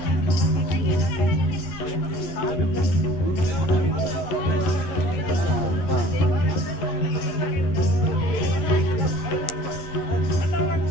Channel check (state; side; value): late; right; 11 ms